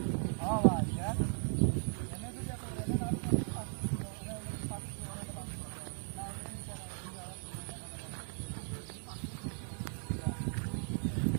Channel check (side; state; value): left; silent; 53 dB below the other